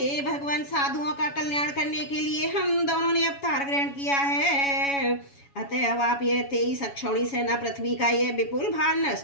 भगवान साधुओं का कल्याण करने के लिए हम दोनों ने अवतार ग्रहण किया है। अतएव आप ये 23 अक्षौणी सेना पृथ्वी का ये विपुल भार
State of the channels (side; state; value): right; late; 7.1 ms